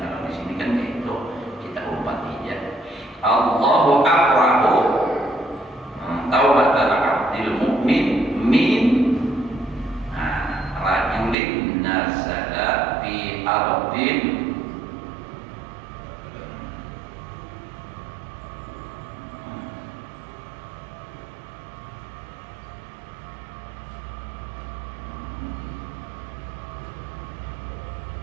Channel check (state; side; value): drops out; left; at 11.4 s